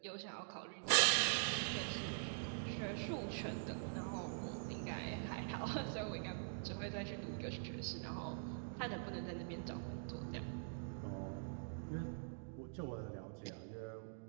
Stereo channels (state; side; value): silent; left; digital silence